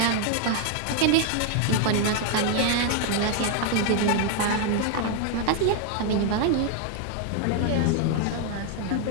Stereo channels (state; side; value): different; both; correlation 0.00